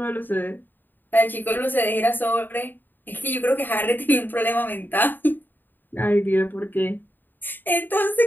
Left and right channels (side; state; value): right; late; 0.091 ms